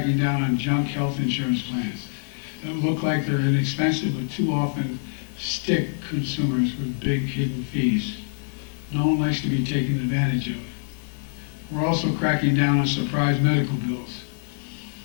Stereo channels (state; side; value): silent; right; digital silence